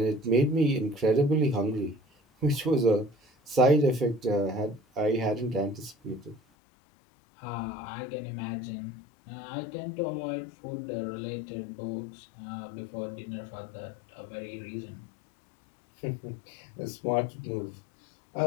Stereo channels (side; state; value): right; drops out; at 6.4 s